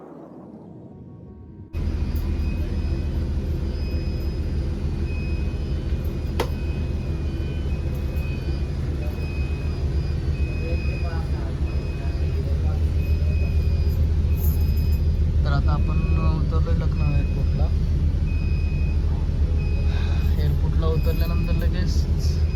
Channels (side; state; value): both; identical; correlation 1.00